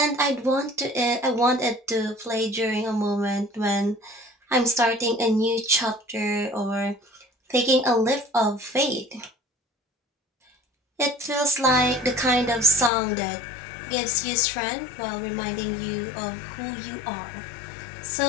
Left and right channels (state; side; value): drops out; right; at 12.9 s